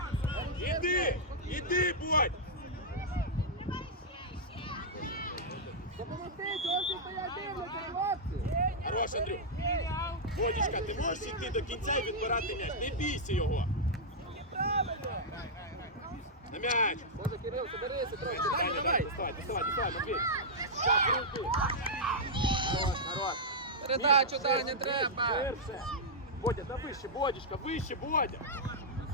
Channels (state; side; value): normal; both; correlation -0.09